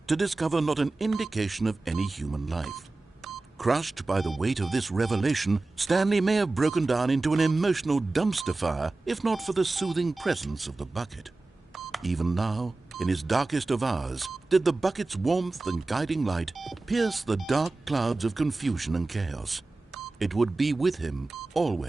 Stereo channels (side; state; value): left; quieter; 3.3 dB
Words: to discover not an indication of any human life. Crushed by the weight of this revelation, Stanley may have broken down into an emotional dumpster fire if not for the soothing presence of the bucket. Even now, in his darkest of hours, did the bucket's warmth and guiding light pierce the dark clouds of confusion and chaos. It would be with him